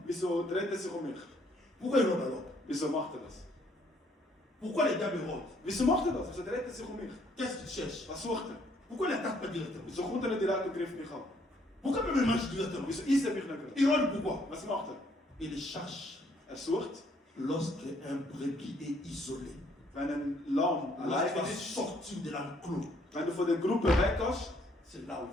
Wieso dreht er sich um mich? Pourquoi il rôde alors? Wieso macht er das? Pourquoi le diable rôde? Wieso macht er das? Wieso dreht er sich um mich? Qu'est-ce qu'il cherche? Was sucht er? Pourquoi il n'attaque pas directement? Wieso kommt er nicht direkt und greift mich an? Pourquoi même il marche directement? Wieso isst er mich nicht gerade? Il rôde pourquoi? Was macht er? Il cherche Er sucht, lorsque un brebis est isolé. wenn ein Lamm allein Lorsqu'il est ist, sorti de l'enclos, wenn du von der Gruppe weggehst, c'est là où il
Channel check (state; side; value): normal; both; correlation 0.66